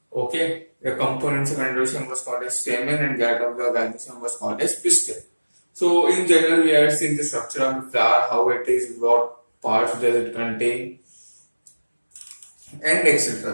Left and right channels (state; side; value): inverted; both; correlation -1.00